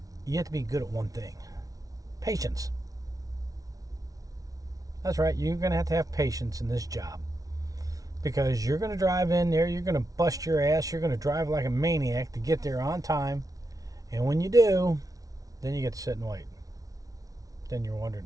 you have to be good at one thing. Patience. That's right, you're going to have patience in this job, because you're going to drive in there, you're going to bust your ass, you're going to drive like a maniac to get there on time, and when you do, then you get to sit and wait. Then you're wondering,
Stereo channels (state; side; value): late; left; 0.18 ms